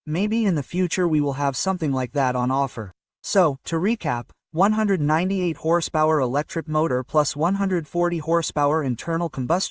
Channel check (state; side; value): identical; both; correlation 1.00